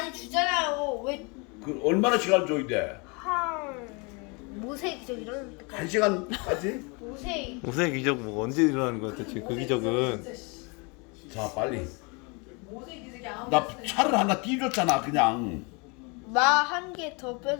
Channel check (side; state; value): right; quieter; 30.9 dB